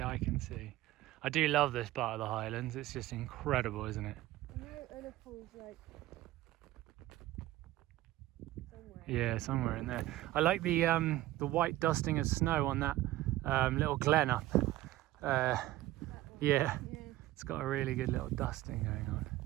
eye can see. I do love this part of the Highlands. It's just incredible, isn't it? I know Ullapool's like somewhere. Yeah, somewhere in there. I like the white dusting of snow on that little glen up. Yeah, it's got a really good little dusting going on.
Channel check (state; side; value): quieter; left; 16.0 dB